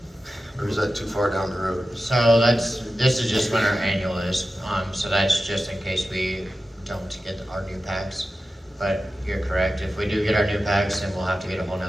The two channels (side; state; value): both; normal; correlation 0.93